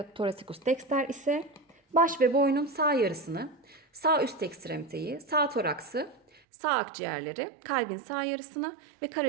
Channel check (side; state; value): left; drops out; at 6.4 s